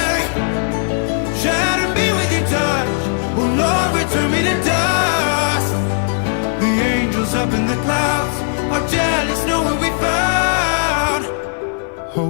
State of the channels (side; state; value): right; silent; 68 dB below the other